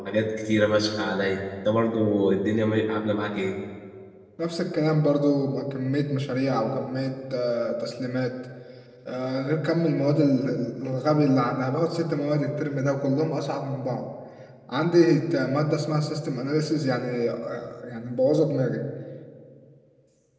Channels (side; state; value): both; identical; correlation 1.00